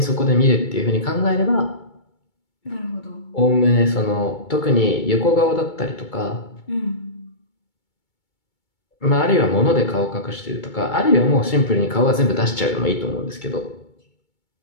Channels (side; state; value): right; late; 2.2 ms